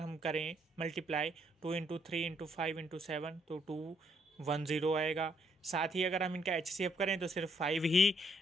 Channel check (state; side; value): normal; both; correlation 0.71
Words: करें मल्टीप्लाई 2 × 3 × 5 × 7 तो 210 आएगा। साथ ही अगर हम इनका एचसीएफ करें तो सिर्फ 5 ही